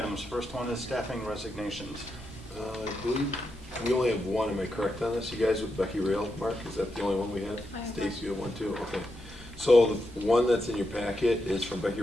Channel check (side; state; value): both; normal; correlation 0.85